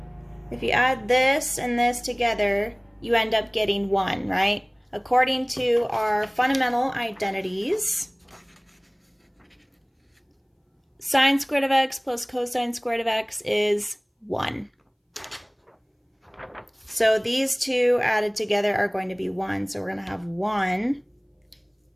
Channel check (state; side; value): identical; both; correlation 1.00